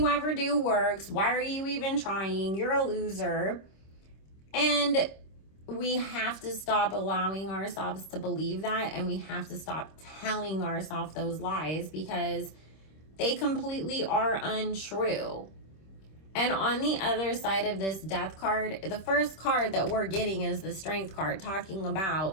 ever do works. Why are you even trying? You're a loser. And we have to stop allowing ourselves to believe that, and we have to stop telling ourselves those lies, because they completely are untrue. And on the other side of this death card, the first card that we're getting is the Strength card, talking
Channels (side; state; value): right; late; 26 ms